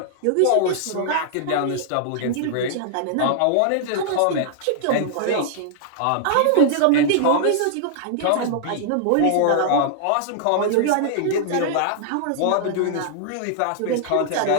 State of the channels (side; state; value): both; different; correlation -0.01